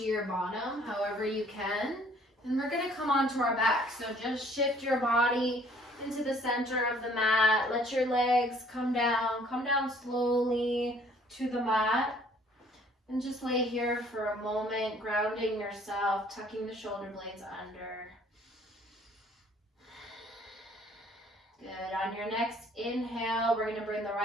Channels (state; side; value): normal; both; correlation 0.58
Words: your bottom, however you can. And we're going to come onto our back. So just shift your body into the center of the mat. Let your legs come down slowly to the mat. And just lay here for a moment, grounding yourself, tucking the shoulder blades under. Good. On your next inhale, we're going to bring the